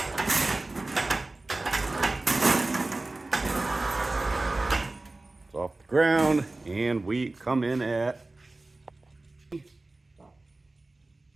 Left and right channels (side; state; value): left; quieter; 3.0 dB